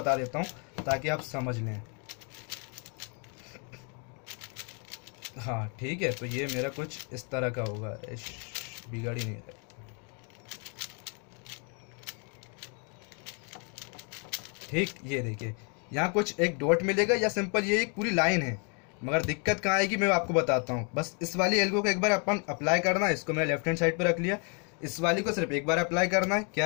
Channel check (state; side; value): quieter; right; 36.9 dB